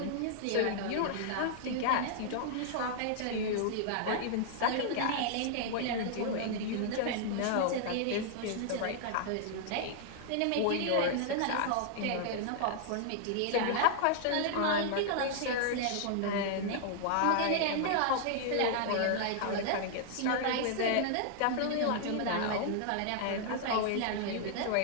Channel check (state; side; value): different; both; correlation -0.01